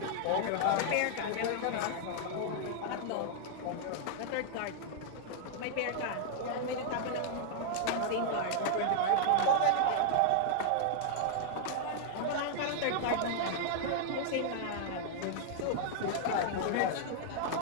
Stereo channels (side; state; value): both; different; correlation -0.01